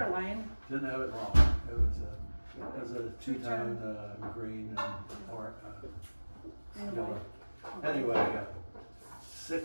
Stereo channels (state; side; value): inverted; both; correlation -1.00